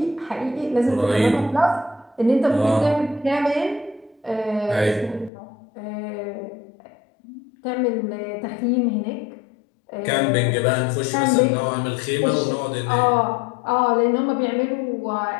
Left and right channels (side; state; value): right; drops out; at 5.3 s